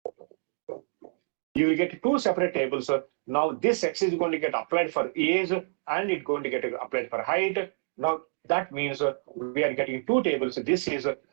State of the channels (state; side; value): silent; left; digital silence